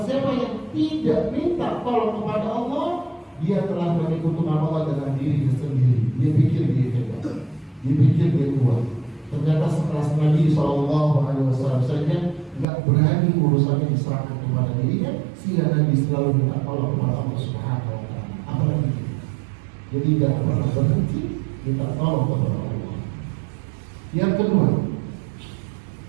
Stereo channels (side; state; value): left; drops out; at 12.7 s